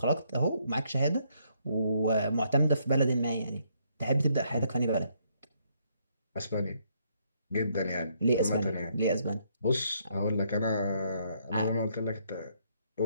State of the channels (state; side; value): inverted; both; correlation -0.71